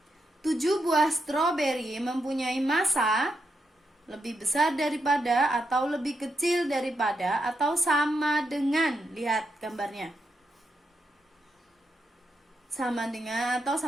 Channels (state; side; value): normal; both; correlation 0.83